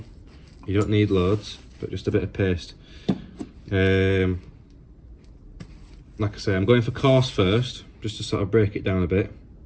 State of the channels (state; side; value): identical; both; correlation 1.00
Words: you don't need loads, but just a bit of paste. Like I say, I'm going for coarse first, just to sort of break it down a bit,